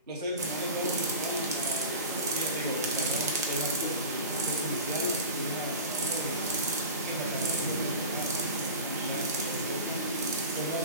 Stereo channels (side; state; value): both; inverted; correlation -0.32